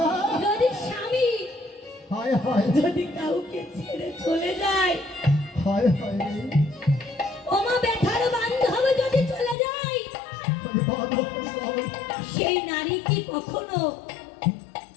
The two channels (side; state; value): right; drops out; at 9.6 s